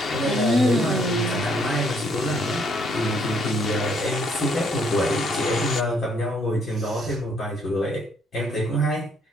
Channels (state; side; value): normal; both; correlation 0.67